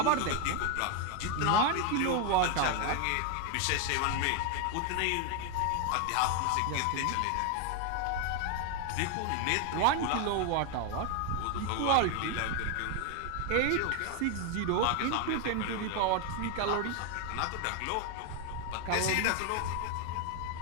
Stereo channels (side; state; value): both; different; correlation 0.01